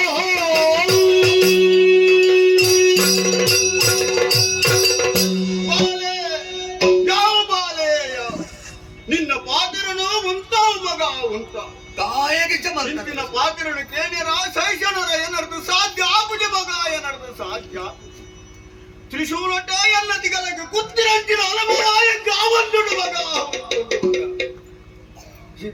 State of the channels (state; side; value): identical; both; correlation 1.00